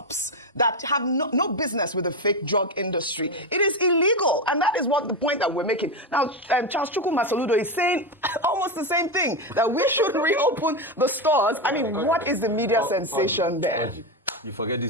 that have no business with the fake drug industry. It is illegal, and that is what the point that we're making. Now, Charles Chukwuma Soludo is saying almost the same thing, that we should reopen the stores. I mean, what is the media sensation there? You forget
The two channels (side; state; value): both; normal; correlation 0.12